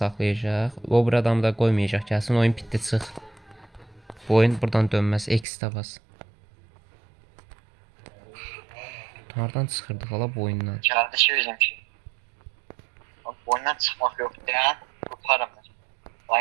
O bir adamı da qoymayacaq. Gəlsin oyun bitdi çıx. Bu oyun buradan dönməz. X-də bas. Hardan çıxırdıq hala bu oyundan? Gəldi ki bizimki. Bak oyundan çıxmaq yox. Dayan. Qurtarım mən.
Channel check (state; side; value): drops out; left; at 5.5 s